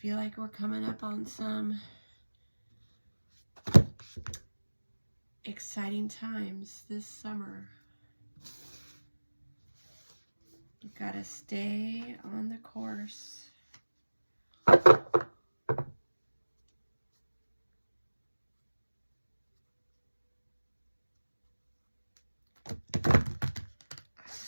Feel like we're coming up on some exciting times this summer. You've got to stay on the course.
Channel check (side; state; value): both; inverted; correlation -1.00